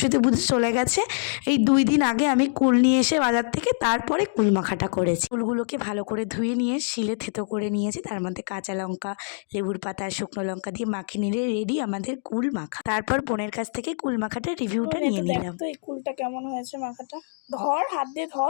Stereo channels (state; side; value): silent; right; digital silence